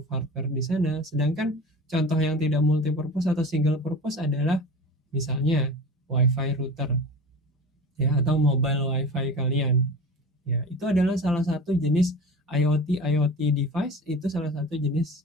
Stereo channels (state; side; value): normal; both; correlation 0.34